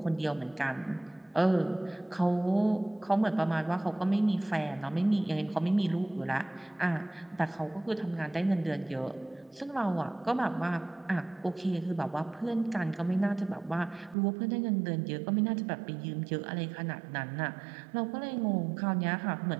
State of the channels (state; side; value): drops out; left; at 14.2 s